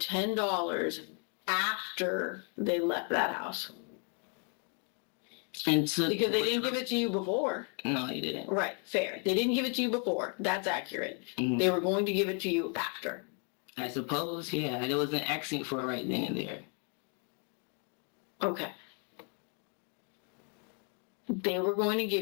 after they left that house. Because they didn't give it to you before. No, they didn't. Right, fair. They didn't give it to you before. That's accurate. Mm-hmm. They were going to give it to you after. I suppose, yeah. There was an accent for it right then and there. Okay. They were going to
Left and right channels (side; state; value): right; quieter; 39.7 dB